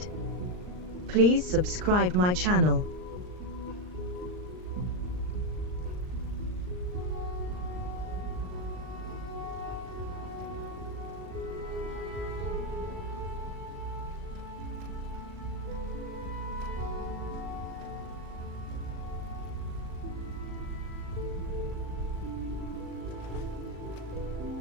Please subscribe my channel.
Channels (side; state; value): left; late; 39 ms